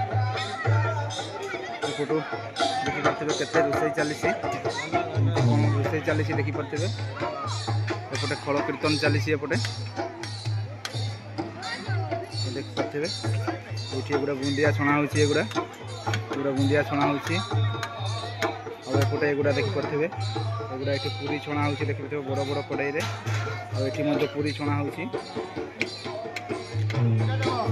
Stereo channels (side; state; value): both; identical; correlation 1.00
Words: एपटू देखिपे केते रोषे चली रोषे चली देखिपे एपटे खल कीर्तन चली एपटे देखिपे ये गुड़ा बुंदिया छणा होगुड़ा बुंदिया छणा होपटे एगुड़ा देखिपे एगुड़ा ये पूरी छणा हो देखिए बड़ बड़ कड़ाई ये पूरी छणा होपटे